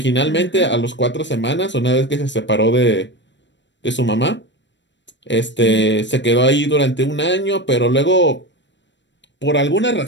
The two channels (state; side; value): late; right; 0.53 ms